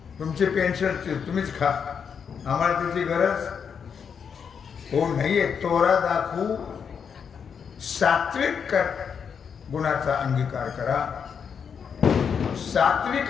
तुमचे पेन्शन तुम्हीच खा, आम्हाला त्याची गरज हो नाहीये. तोरा दाखवू, सात्विक गुणाचा अंगीकार करा.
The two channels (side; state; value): right; quieter; 6.8 dB